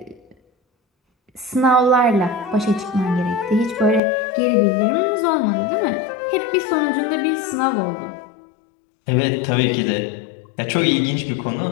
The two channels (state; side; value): drops out; right; at 4.0 s